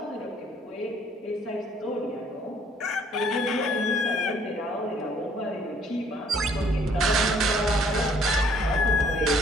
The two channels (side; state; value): both; normal; correlation 0.62